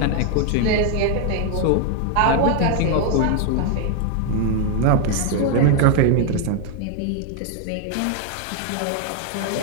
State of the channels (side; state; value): both; different; correlation 0.00